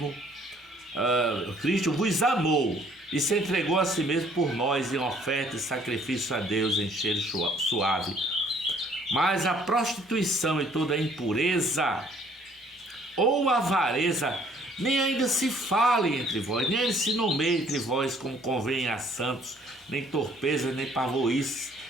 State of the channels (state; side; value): normal; both; correlation 0.60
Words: Cristo vos amou e se entregou a si mesmo por nós em oferta e sacrifício a Deus em cheiro suave. Mas a prostituição e toda a impureza ou avareza nem ainda se fale entre vós, nem ainda se nomeie entre vós como convém a santos, nem torpezas, nem pavoices,